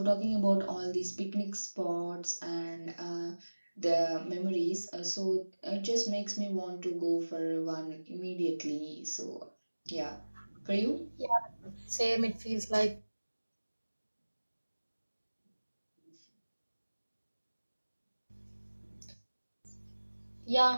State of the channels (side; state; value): both; inverted; correlation -1.00